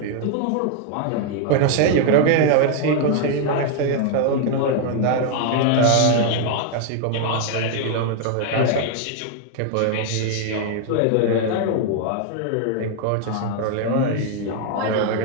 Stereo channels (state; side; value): different; both; correlation 0.00